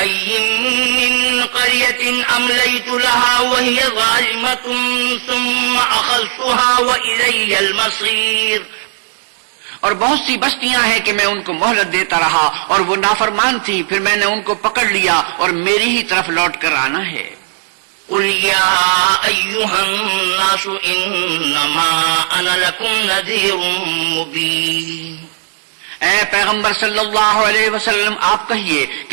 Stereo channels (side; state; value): left; silent; digital silence